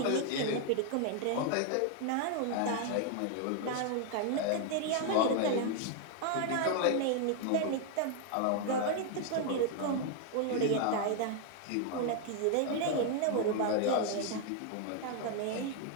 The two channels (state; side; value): different; both; correlation 0.00